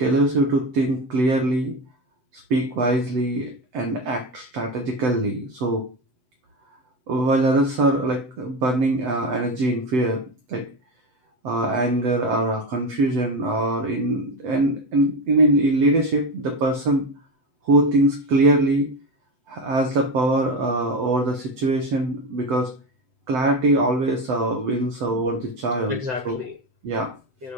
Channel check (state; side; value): late; left; 7.8 ms